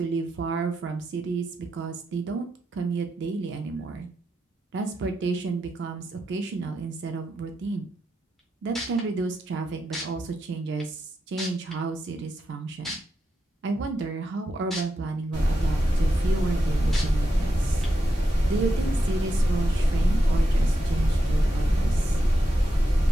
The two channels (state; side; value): normal; both; correlation 0.86